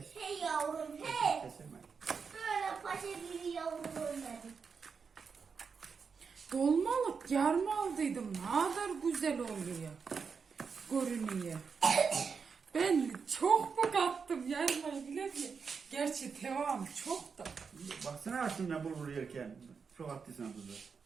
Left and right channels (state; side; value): quieter; left; 5.7 dB